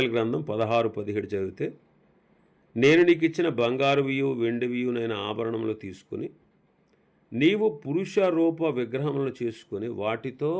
గ్రంథం 16-17 చదివితే, నేను నీకు ఇచ్చిన బంగారువియు వెండివియునైన ఆభరణములు తీసుకుని నీవు పురుష రూప విగ్రహములను చేసుకొని వాటితో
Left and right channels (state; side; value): identical; both; correlation 1.00